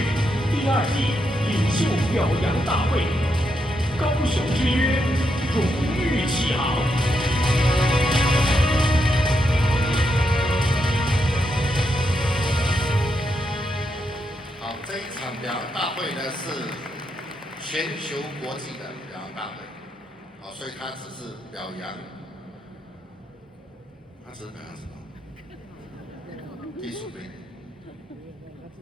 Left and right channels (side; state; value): both; normal; correlation 0.81